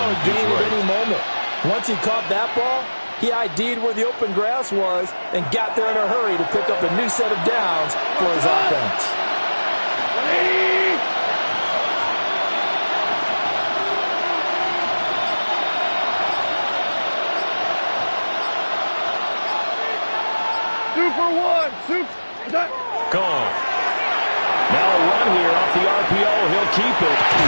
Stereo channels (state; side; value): inverted; both; correlation -1.00